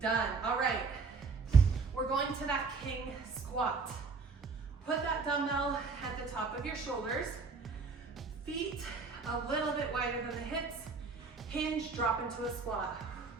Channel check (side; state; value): left; quieter; 4.5 dB